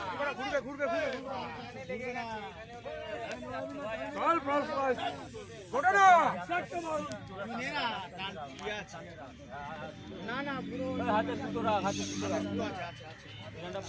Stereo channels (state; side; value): identical; both; correlation 1.00